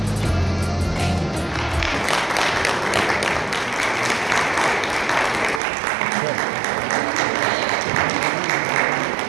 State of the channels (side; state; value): left; drops out; at 5.6 s